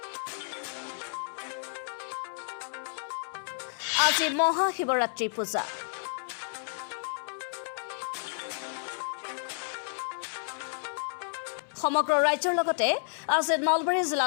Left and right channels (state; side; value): silent; right; 57 dB below the other